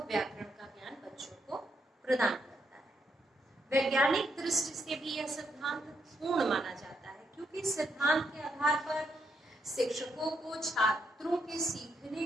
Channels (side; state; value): both; normal; correlation 0.78